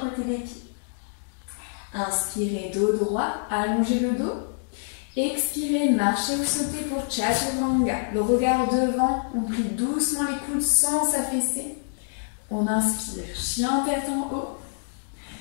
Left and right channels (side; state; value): right; silent; digital silence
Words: des pieds. Inspirez, dos droit, allongez le dos. Expirez, marchez ou sautez pour Chaturanga. Le regard devant, on plie doucement les coudes sans s'affaisser. On inspire, chien tête en haut.